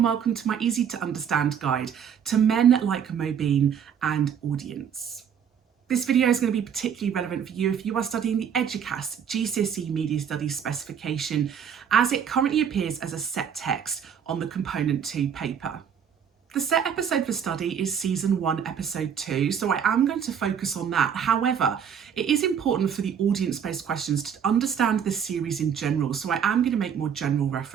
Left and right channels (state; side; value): quieter; left; 7.9 dB